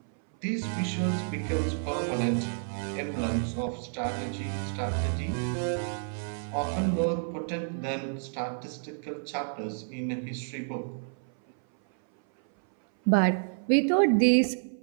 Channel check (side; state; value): left; silent; 58 dB below the other